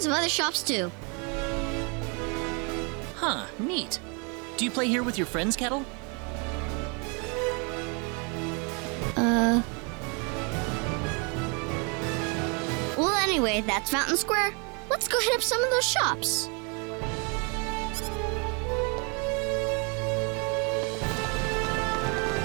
of other shops too. Huh, neat. Do you play here with your friends, Kettle? Well, anyway, that's Fountain Square. Let's go hit up some of those shops.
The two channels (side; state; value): left; quieter; 33.5 dB